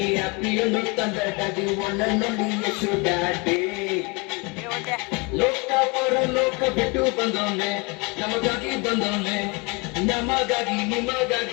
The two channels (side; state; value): right; quieter; 28.6 dB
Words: happy you know that daddy, one and only yes, you daddy. ಲೋಕ ಪರಲೋಕ ಬಿಟ್ಟು ಬಂದವನೆ, ನಮಗಾಗಿ ಬಂದವನೆ, ನಮಗಾಗಿ